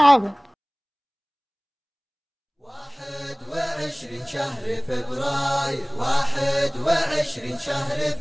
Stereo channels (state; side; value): identical; both; correlation 1.00